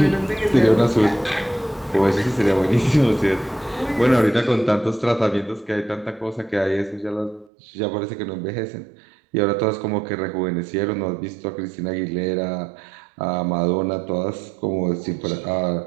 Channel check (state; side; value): drops out; left; at 7.5 s